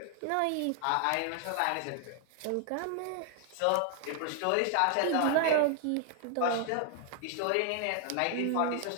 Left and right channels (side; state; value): both; different; correlation 0.00